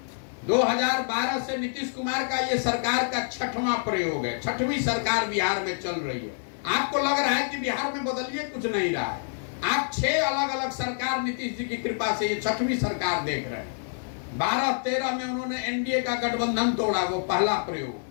2012 से नीतीश कुमार का ये सरकार का 6वां प्रयोग है, 6वीं सरकार बिहार में चल रही है। आपको लग रहा है कि बिहार में बदलिए कुछ नहीं रहा है। आप 6 अलग अलग सरकार नीतीश जी की कृपा से ये 6वीं सरकार देख रहे हैं। 12-13 में उन्होंने एनडीए का गठबंधन तोड़ा, वो पहला प्रयोग।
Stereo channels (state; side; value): silent; right; 60 dB below the other